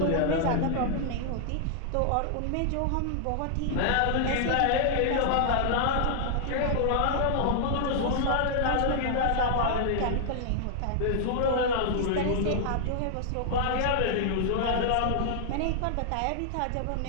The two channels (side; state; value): both; different; correlation -0.01